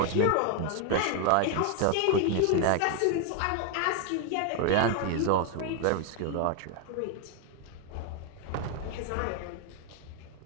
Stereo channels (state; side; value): different; both; correlation 0.00